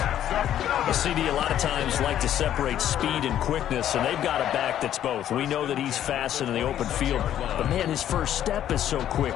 The CD a lot of times like to separate speed and quickness, and they've got a back that's both. We know that he's fast in the open field, but man, his first step is so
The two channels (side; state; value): right; quieter; 11.1 dB